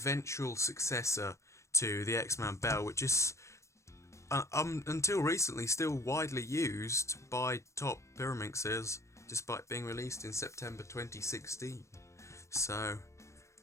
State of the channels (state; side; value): late; right; 0.14 ms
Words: successor to the X-Man Bell, which is until recently still widely used by top pyraminxes, despite being released in September 2016. So,